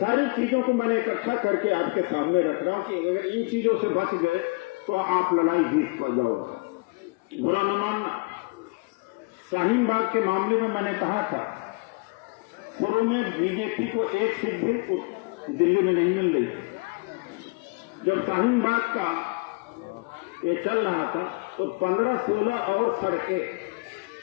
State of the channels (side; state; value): right; quieter; 28.5 dB